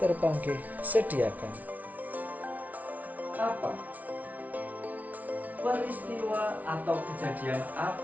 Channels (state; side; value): late; left; 0.074 ms